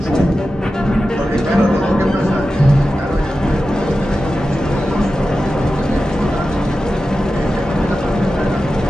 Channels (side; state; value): both; normal; correlation 0.93